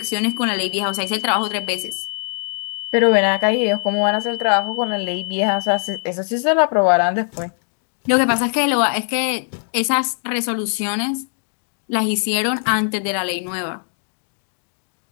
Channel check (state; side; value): silent; right; digital silence